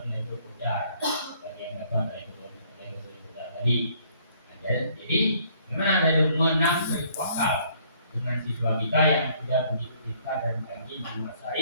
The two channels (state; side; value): inverted; both; correlation -0.63